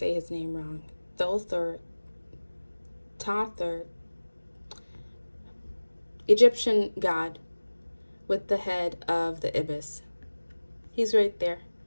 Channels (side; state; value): both; inverted; correlation -1.00